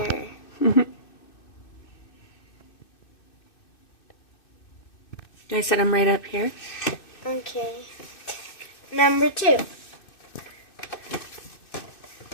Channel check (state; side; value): late; right; 2.6 ms